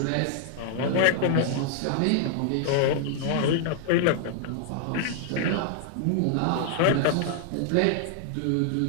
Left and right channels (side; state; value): both; different; correlation 0.00